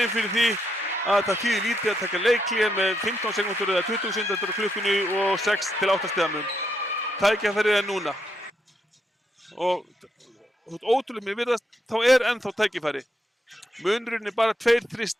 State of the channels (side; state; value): both; normal; correlation 0.79